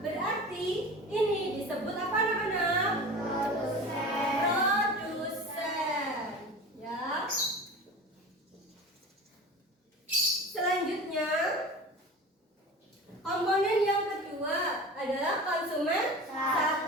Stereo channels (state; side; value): normal; both; correlation 0.35